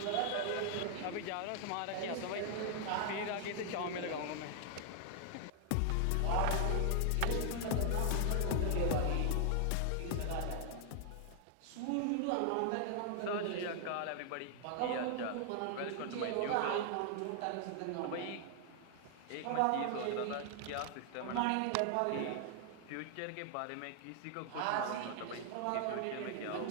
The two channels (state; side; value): different; both; correlation 0.00